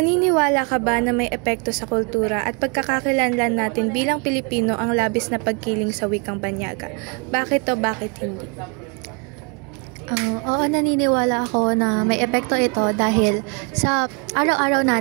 ka ba na may epekto sa kultura at pagkakakilanlan natin bilang Pilipino ang labis na pagkiling sa wikang banyaga? Bakit o bakit hindi? Oo, naniniwala ako na may epekto ito dahil sa araw-araw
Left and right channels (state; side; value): quieter; left; 34.3 dB